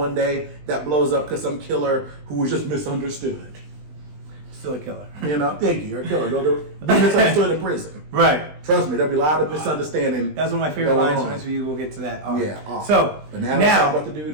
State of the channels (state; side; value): late; left; 20 ms